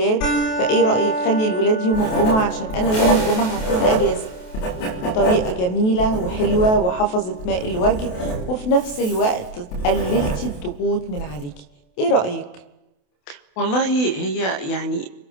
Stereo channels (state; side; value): late; right; 28 ms